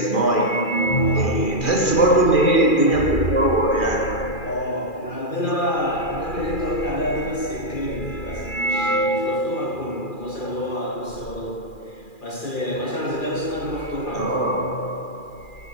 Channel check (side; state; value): right; late; 2.4 ms